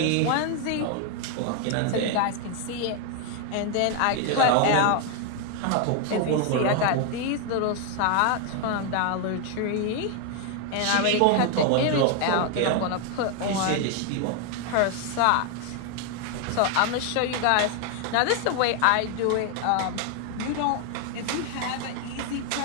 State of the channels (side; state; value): both; different; correlation 0.00